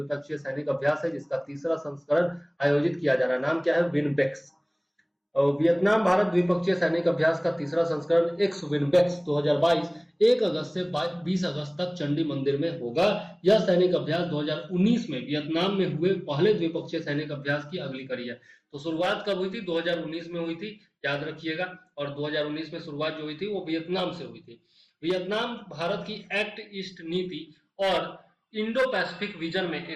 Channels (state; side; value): identical; both; correlation 1.00